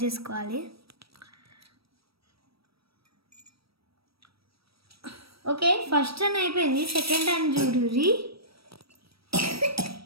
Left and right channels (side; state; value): left; late; 0.76 ms